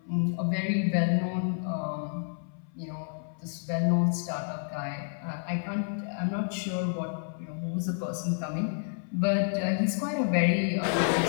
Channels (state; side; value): silent; right; 58 dB below the other